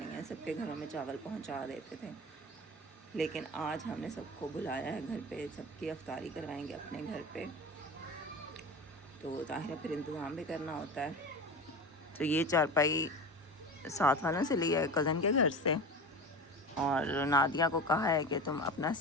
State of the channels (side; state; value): both; normal; correlation 0.29